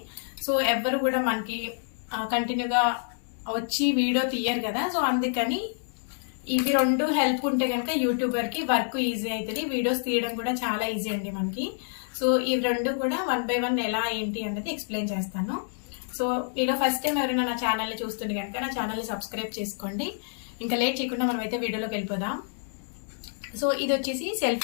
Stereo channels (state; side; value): silent; right; digital silence